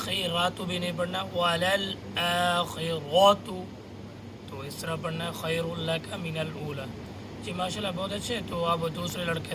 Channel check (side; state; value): both; identical; correlation 1.00